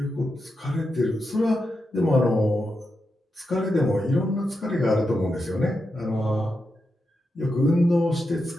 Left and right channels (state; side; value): normal; both; correlation 0.87